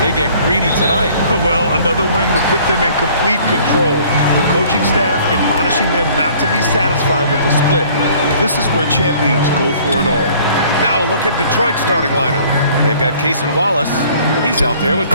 get greedy tonight. Well, another win would put them in complete control. The coaching staff admonishing them not to be satisfied with the split. This is where champions go for it all. Now look at Detroit's starting lineup. They've got Cason Wallace. He's out there with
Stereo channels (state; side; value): inverted; both; correlation -0.55